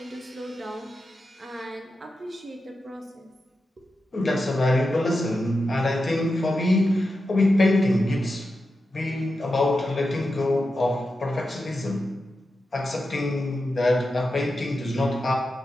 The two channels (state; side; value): normal; both; correlation 0.90